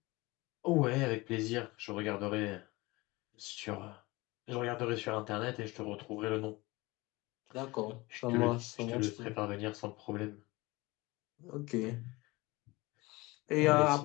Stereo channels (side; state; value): right; quieter; 22.4 dB